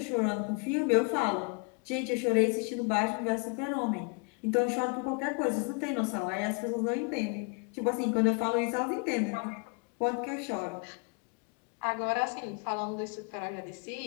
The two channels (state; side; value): quieter; right; 34.8 dB